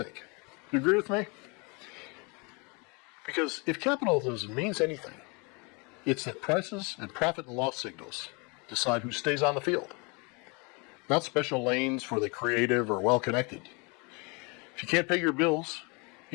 Do you agree with me? Because if capitalism means anything, it's that prices and profit and loss signals decide who stays on the field. Not special lanes for the creative or well-connected. If you can't pay your bills,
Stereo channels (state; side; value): quieter; right; 30.4 dB